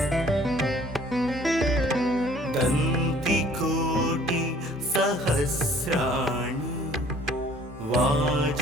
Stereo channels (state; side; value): normal; both; correlation 0.55